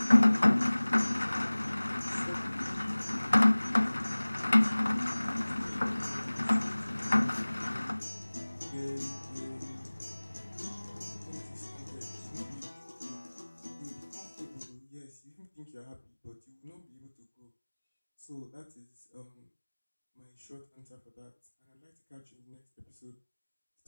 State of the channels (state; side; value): inverted; both; correlation -1.00